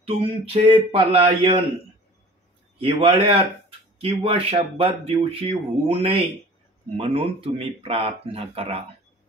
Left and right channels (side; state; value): both; normal; correlation 0.45